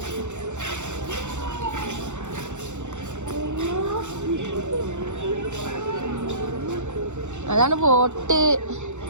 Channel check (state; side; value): late; left; 0.84 ms